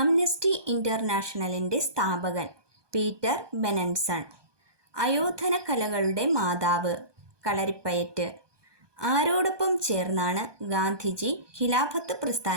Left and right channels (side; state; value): left; late; 1.2 ms